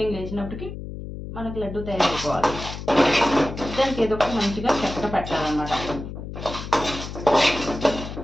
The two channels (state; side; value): noise; left; hum, 9 dB below the sound